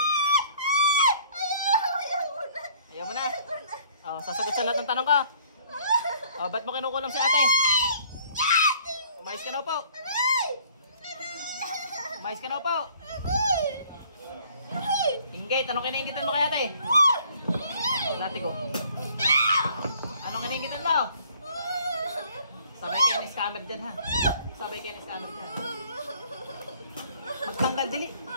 Ayaw mo na. Oh, sasagot sa lahat ng tanong ko. Oh, ba't mo kinukulam si ate? Umayos ka na po. Umayos ka na po. Inggit, anong kinainggitan mo kay ate? Dati ko. Anong kinainggitan mo? Sabay kayo ni scammer dyan, ha? Sabay kayo ni scammer dyan. Magtanggal, dali.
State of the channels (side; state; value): both; inverted; correlation -0.58